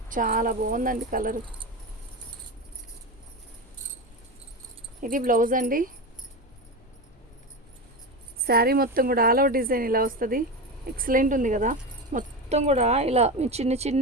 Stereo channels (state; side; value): normal; both; correlation 0.20